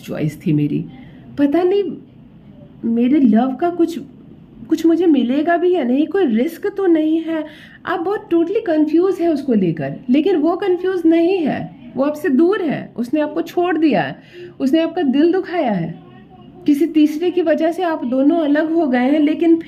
थी मेरी। पता नहीं मेरे लव का कुछ मुझे मिलेगा भी या नहीं, कोई रिस्क तो नहीं है। आप बहुत टोटली कंफ्यूज है उसको लेकर, लेकिन वो कंफ्यूज नहीं है, वो आपसे दूर है, उसने आपको छोड़ दिया है, उसने आपका दिल दुखाया है, किसी तीसरे की वजह से आप दोनों अलग हो गए हैं, लेकिन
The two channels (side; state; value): both; identical; correlation 1.00